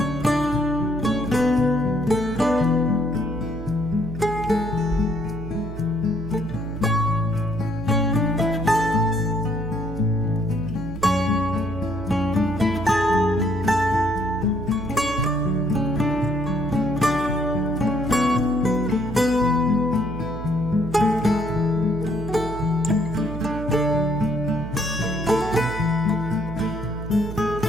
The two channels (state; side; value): noise; right; hum, 9 dB below the sound